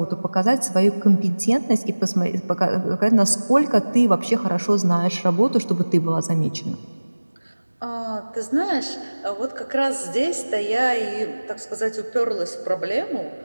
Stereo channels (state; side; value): inverted; both; correlation -1.00